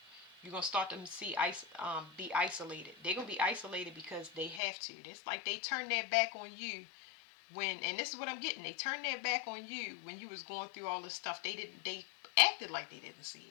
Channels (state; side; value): drops out; right; at 4.6 s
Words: You're going to start to be isolated. They're going to be isolated because they have to. It's like they turn their back on you when, and this is what I'm getting, they turned their back on you when you was going through all this stuff. They acted like they didn't see